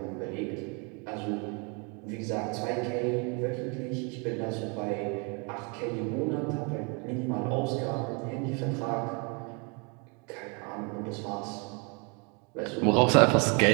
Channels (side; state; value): left; quieter; 33.4 dB